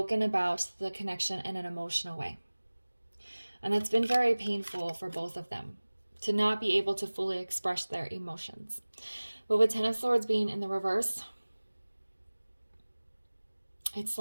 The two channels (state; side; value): inverted; both; correlation -1.00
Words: about the connection in an emotional way. And that's been very painful for both of them, to not be able to fully express their emotions. But with 10 of Swords being in the reverse, it's